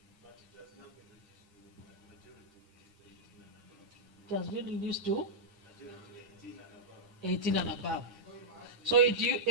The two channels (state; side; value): late; left; 8.8 ms